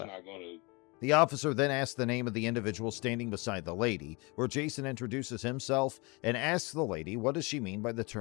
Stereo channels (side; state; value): right; quieter; 28.0 dB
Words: going to... The officer then asks the name of the individual standing beside the lady, where Jason introduces himself and asks the lady what does she mean by the